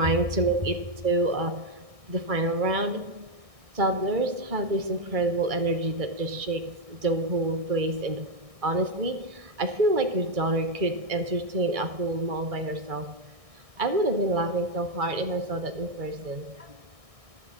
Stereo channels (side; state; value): left; late; 1.6 ms